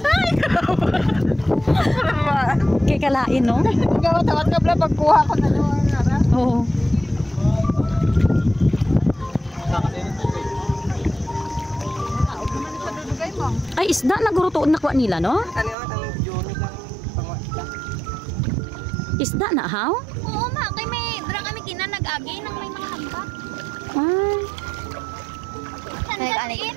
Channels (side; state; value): left; drops out; at 15.8 s